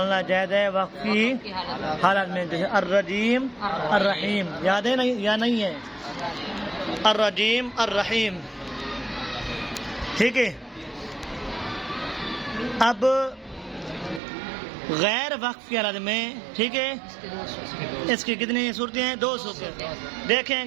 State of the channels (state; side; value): drops out; left; at 14.2 s